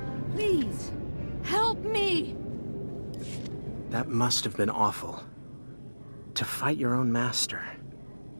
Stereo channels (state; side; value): inverted; both; correlation -1.00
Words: Please, help me! That must have been awful. To fight your own master.